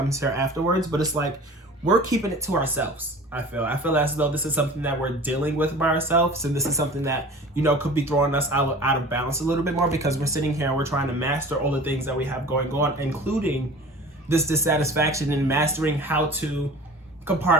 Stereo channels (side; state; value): both; normal; correlation 0.41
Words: here afterwards. But it's like, we're keeping it to ourselves. I feel as though this is something that we're dealing with by ourselves. And this is something that, could be throwing us out of balance a little bit more, because we're sitting here and we're trying to master all the things that we have going on, including this dissatisfaction, and mastering how to